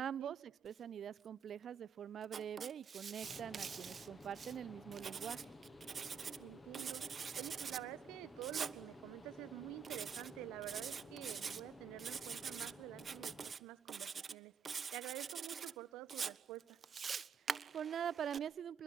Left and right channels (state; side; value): quieter; left; 7.0 dB